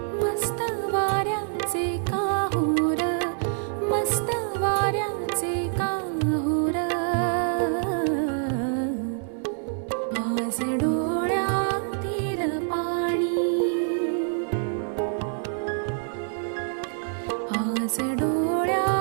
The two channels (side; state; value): left; silent; digital silence